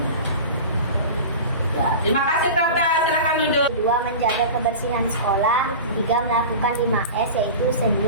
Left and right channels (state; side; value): inverted; both; correlation -0.32